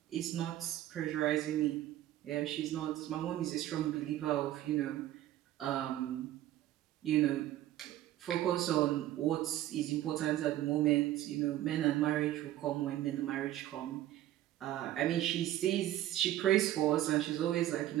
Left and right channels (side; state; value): left; quieter; 13.7 dB